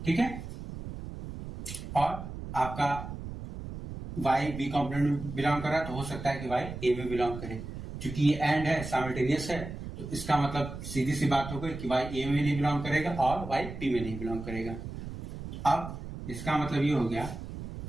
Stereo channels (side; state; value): right; noise; rumble, 9 dB below the sound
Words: ठीक है, और आपका y b कॉम्प्लीमेंट में बिलोंग कर रहा है, तो हो सकता है कि y a में बिलोंग करे। क्योंकि ये एंड है, साइमल्टेनियस है, तो इसका मतलब सीधी सी बात हो गई कि y a में नहीं बिलोंग करेगा और y b में नहीं बिलोंग करेगा। अब इसका मतलब ये हो गया